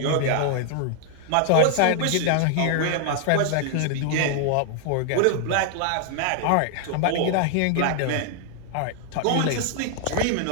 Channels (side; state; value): both; different; correlation 0.00